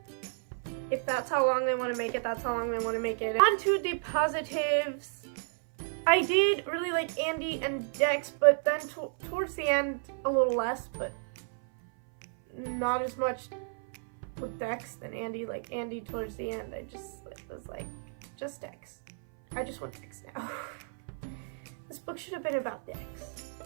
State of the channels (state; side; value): silent; left; 56 dB below the other